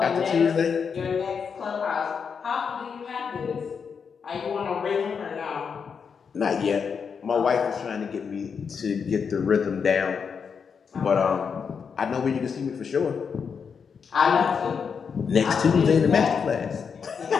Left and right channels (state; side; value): quieter; right; 6.2 dB